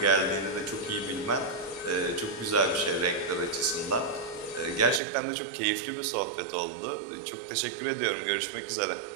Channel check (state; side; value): drops out; left; at 5.0 s